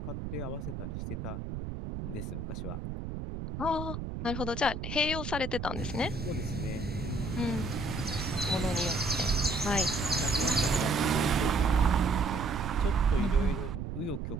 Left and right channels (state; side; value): noise; right; rumble, 6 dB below the sound